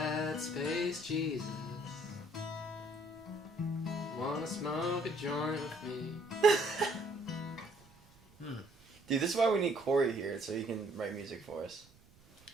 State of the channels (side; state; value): right; noise; rumble, 27 dB below the sound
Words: at, Space Jesus? Wanna smoke a joint with me? Dude, this is why we need Corey here, so he can write music for us.